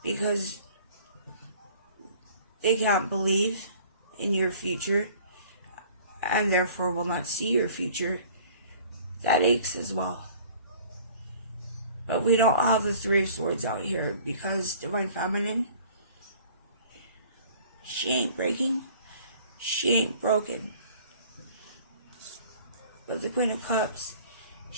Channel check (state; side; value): inverted; both; correlation -0.50